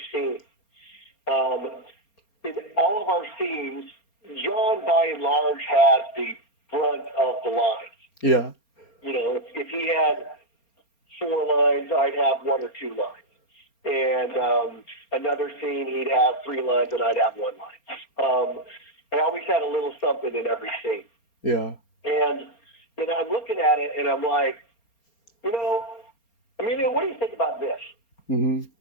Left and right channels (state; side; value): late; right; 4.3 ms